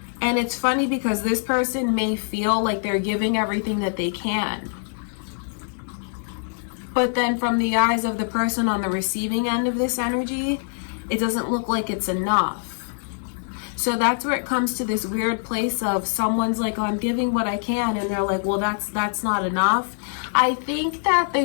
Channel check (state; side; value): silent; right; digital silence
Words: And it's funny because this person may feel like they're giving everything that they can. But then from the eyes of the person on the receiving end of this energy, it doesn't look like it's enough. So that's where it comes to this weird place of someone's like, oh, I'm giving what I can. And they're like, well, that's not enough. I think that the